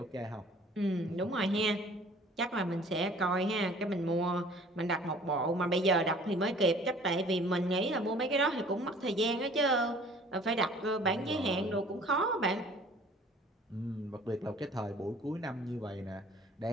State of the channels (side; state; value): both; normal; correlation 0.51